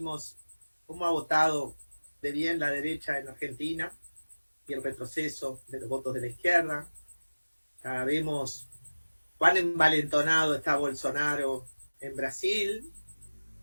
cómo ha votado de bien la derecha en Argentina y el retroceso de los votos de la izquierda. Ya vemos cuán envalentonado está Bolsonaro en Brasil,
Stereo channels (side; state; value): both; inverted; correlation -1.00